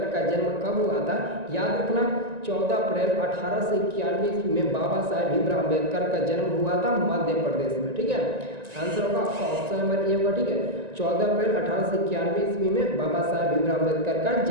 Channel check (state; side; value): late; left; 1.9 ms